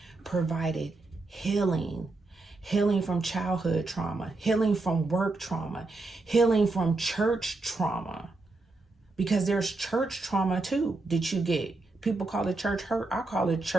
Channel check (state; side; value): quieter; left; 3.3 dB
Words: provided healing from childhood trauma, healing from work trauma, healing from church trauma, because there's church trauma too that you get. People call it church hurt. I call it